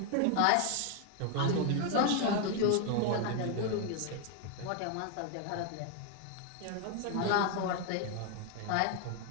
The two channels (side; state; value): both; different; correlation 0.01